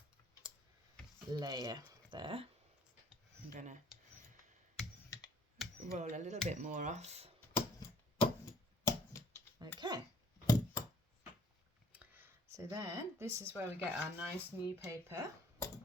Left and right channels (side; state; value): both; normal; correlation 0.59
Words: layer there. I'm going to roll a little bit more off. Okay. So then, this is where we get our nice new paper.